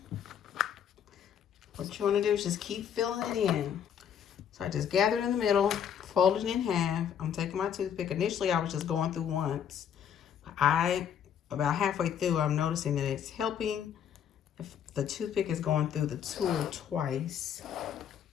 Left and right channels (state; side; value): quieter; right; 8.6 dB